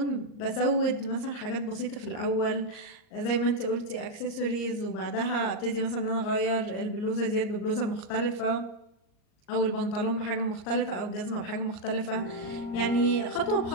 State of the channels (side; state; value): right; late; 39 ms